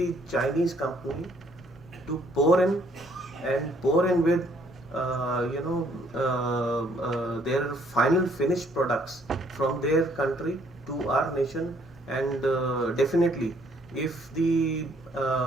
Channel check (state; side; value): normal; both; correlation 0.65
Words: Chinese company to pour in with their final finished products from their country to our nation. And definitely, if the